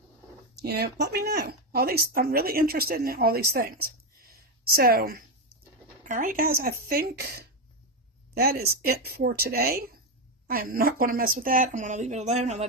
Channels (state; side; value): normal; both; correlation 0.08